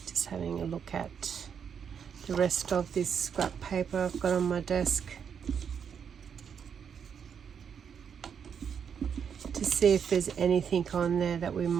Just having a look at the rest of this scrap paper I've got on my desk to see if there's anything on there that we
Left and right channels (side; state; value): left; quieter; 7.4 dB